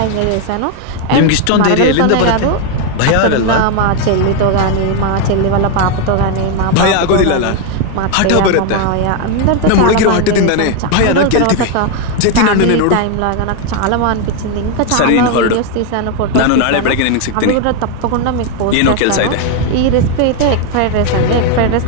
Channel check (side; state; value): both; different; correlation 0.01